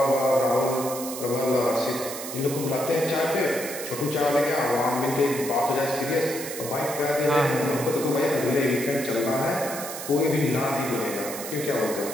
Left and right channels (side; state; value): right; noise; hiss, 8 dB below the sound